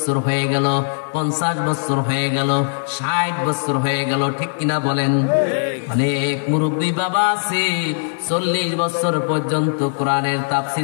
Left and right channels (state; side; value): silent; right; 66 dB below the other